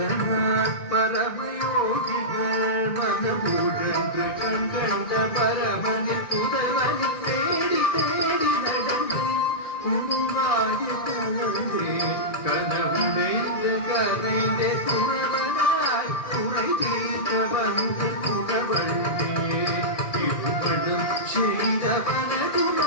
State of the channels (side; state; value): right; late; 1.7 ms